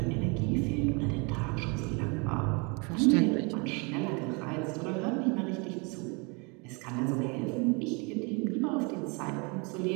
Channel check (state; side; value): quieter; left; 31.4 dB